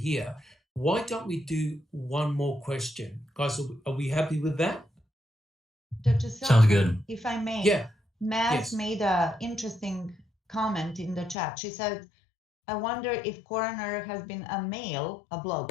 Why don't we do one more question? Guys, are we happy with that? Dr. Sounds good. If I may. Yeah. Maz made an interesting comment in the chat. She said, I wonder if coroner has been a male, a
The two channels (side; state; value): right; drops out; at 11.4 s